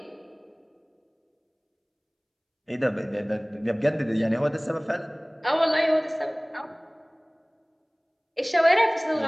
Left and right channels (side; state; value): both; identical; correlation 1.00